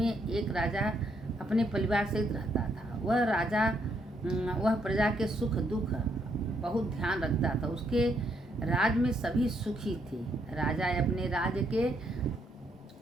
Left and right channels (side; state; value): both; normal; correlation 0.74